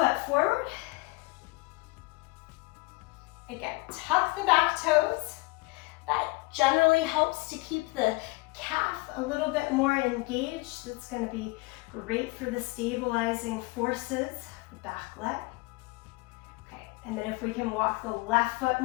forward. Again, tuck the back toes. That generally helps to keep the calf a little bit more engaged. That's going to be great for the stabilizing forces, the back leg. Okay, and then if we can walk the left foot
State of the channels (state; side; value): quieter; right; 24.4 dB